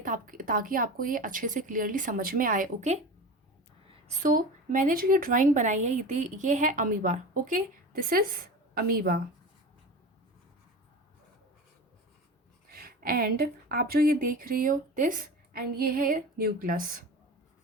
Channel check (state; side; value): normal; both; correlation 0.31